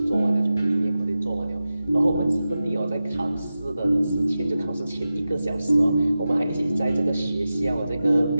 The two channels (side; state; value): both; inverted; correlation -0.93